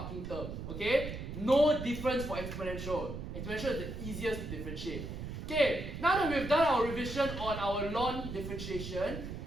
term. Okay, no difference for exponential. Exponential is the easiest to differentiate. Okay, now that we've done our revision on our ln differentiation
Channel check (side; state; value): right; noise; rumble, 7 dB below the sound